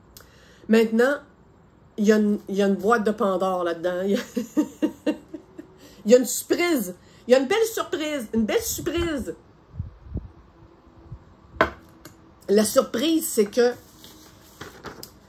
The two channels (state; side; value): identical; both; correlation 1.00